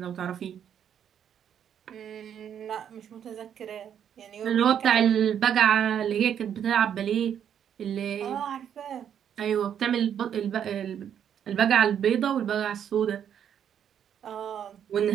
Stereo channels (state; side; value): quieter; left; 9.0 dB